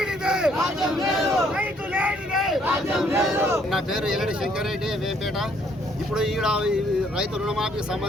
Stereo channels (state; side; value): normal; both; correlation 0.66